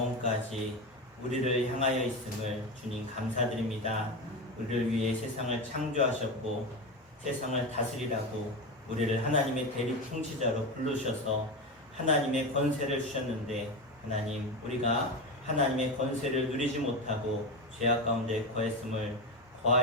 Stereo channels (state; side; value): normal; both; correlation 0.19